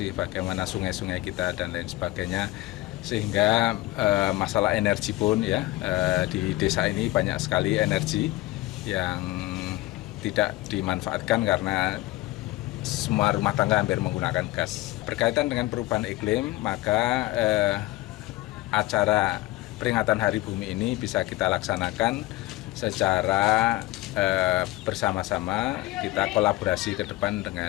bagaimana sungai-sungai kita dan lain sebagainya. Sehingga masalah energi pun ya, di desa ini banyak sekali energi yang tidak dimanfaatkan karena semua rumah tangga hampir menggunakan gas. Berkaitan dengan perubahan iklim, maka acara peringatan Hari Bumi ini bisa kita laksanakan secara bersama-sama, kita kolaborasi ke depan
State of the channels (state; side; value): quieter; right; 18.8 dB